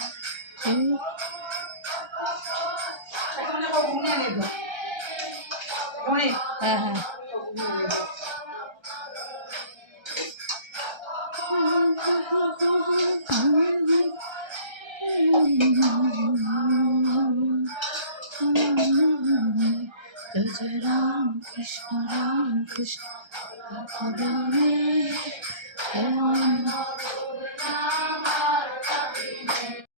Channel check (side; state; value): left; late; 1.3 ms